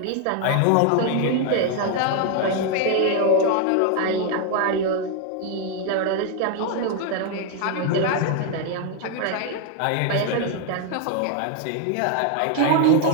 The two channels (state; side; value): different; both; correlation 0.00